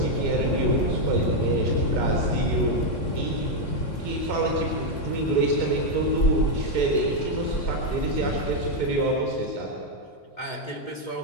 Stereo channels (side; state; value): right; late; 3.6 ms